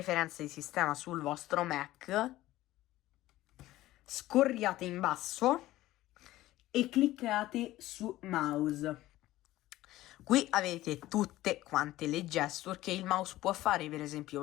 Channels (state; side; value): quieter; right; 16.0 dB